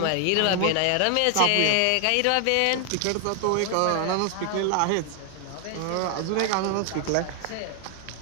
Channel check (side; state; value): both; different; correlation 0.00